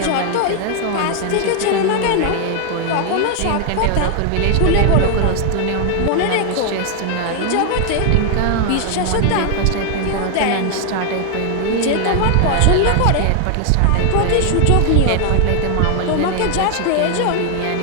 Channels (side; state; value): both; different; correlation 0.00